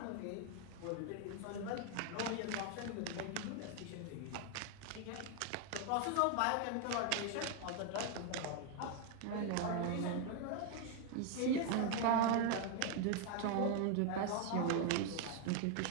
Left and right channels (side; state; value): both; different; correlation 0.01